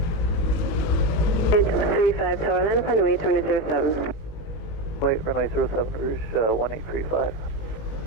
835 Tower Line upon way 2007. Wait, runway 07, Rouge 1835.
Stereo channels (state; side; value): late; right; 19 ms